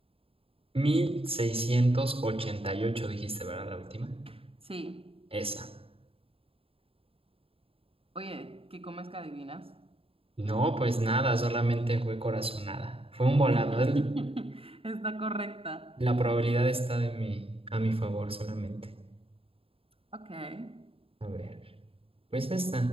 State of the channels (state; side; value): late; left; 0.27 ms